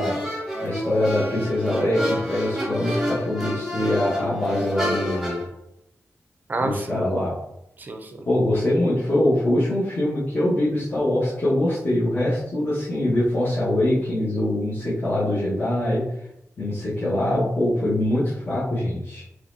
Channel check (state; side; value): normal; both; correlation 0.89